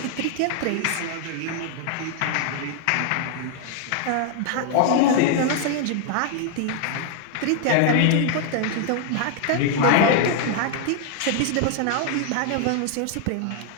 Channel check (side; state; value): both; different; correlation 0.00